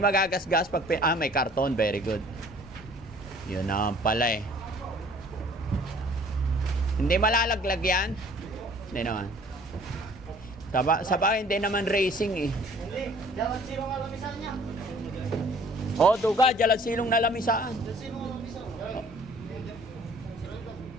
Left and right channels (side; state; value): left; noise; rumble, 21 dB below the sound